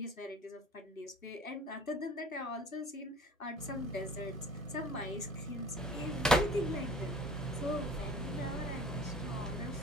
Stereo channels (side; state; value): both; normal; correlation 0.46